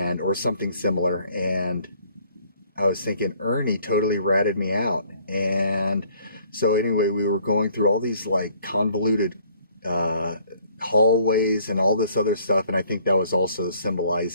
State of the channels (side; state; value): both; inverted; correlation -0.60